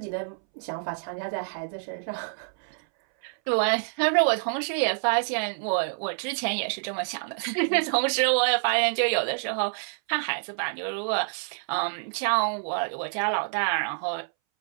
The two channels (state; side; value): silent; left; 60 dB below the other